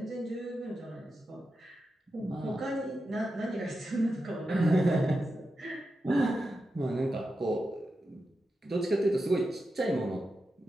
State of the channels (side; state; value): both; normal; correlation 0.89